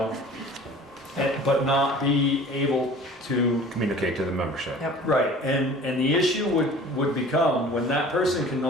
but not be able to Communicate to the membership. Yep. right, and the issue would become when that person can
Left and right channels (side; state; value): both; normal; correlation 0.45